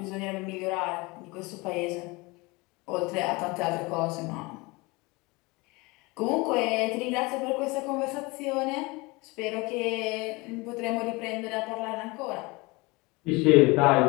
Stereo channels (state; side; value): quieter; right; 24.9 dB